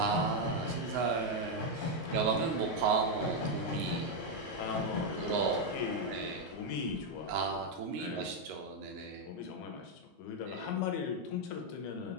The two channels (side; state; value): both; normal; correlation 0.02